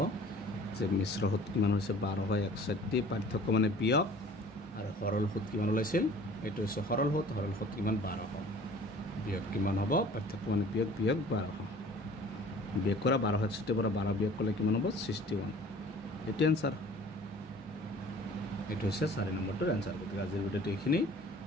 যে মিশ্ৰ সুত কিমান হৈছে 1261 পাৰ্থক্য মানে বিয়োগ আৰু সৰল সুত কিমান ওলাইছিল এইটো হৈছে সৰল সুত কিমান 1200 বিয়োগ কিমান হ'ব পাৰ্থক্য মানে বিয়োগ 1200 বিয়োগ কৰা 1261 পৰা 12 বিয়োগ কৰিলে কিমান হ'ব 61 এইটো এনসাৰ এইটো হৈছে 4 নম্বৰটোৰ এনসাৰ গতিকে আজিৰ ভিডিঅ'টো এইখিনি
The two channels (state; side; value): normal; both; correlation 0.48